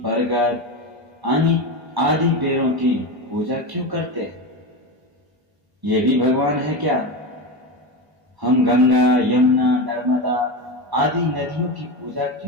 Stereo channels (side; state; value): left; late; 1.0 ms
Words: बरगद आदि पेड़ों की पूजा क्यों करते हैं? ये भी भगवान है क्या? हम गंगा, यमुना, नर्मदा आदि नदियों की पूजा